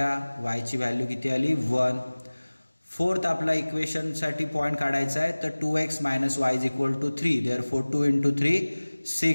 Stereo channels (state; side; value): inverted; both; correlation -1.00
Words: वायची व्हॅल्यू किती आली 1. फोर्थ आपला इक्वेशनसाठी पॉईंट काढायचा आहे, तर 2x - y = 3. therefore 2 × 3